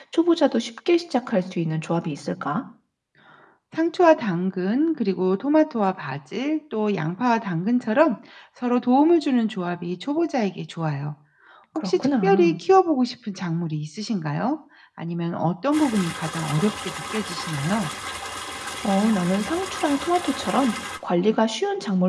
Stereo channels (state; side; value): identical; both; correlation 1.00